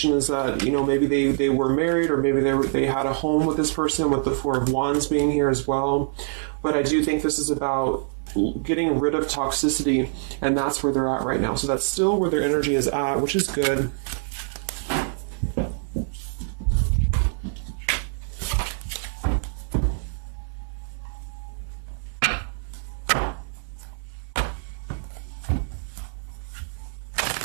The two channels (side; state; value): left; silent; 62 dB below the other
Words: is that, you know, maybe they were married, or maybe they had a home with this person, with the Four of Wands being here as well. But I do think this is about getting rid of toxicity, and that's where they're at right now. So that's still where their energy is at, which is good.